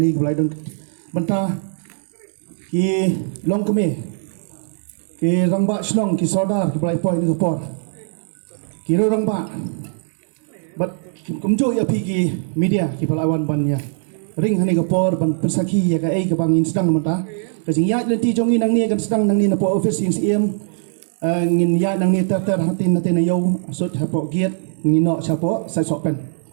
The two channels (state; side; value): silent; left; digital silence